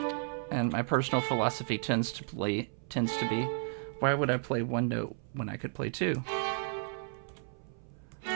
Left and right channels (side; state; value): left; silent; 56 dB below the other